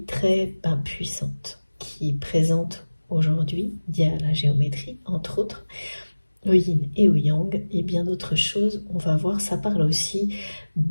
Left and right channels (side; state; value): both; inverted; correlation -1.00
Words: très puissante qui est présente aujourd'hui, via la géométrie, entre autres, le yin et le yang, et bien d'autres choses. On va voir, ça parle aussi